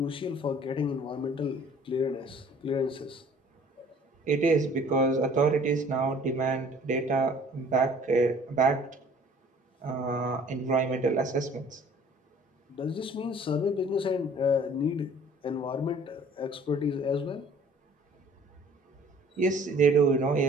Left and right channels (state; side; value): normal; both; correlation 0.52